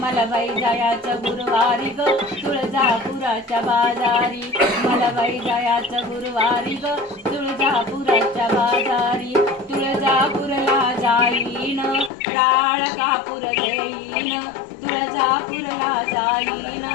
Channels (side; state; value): right; drops out; at 12.1 s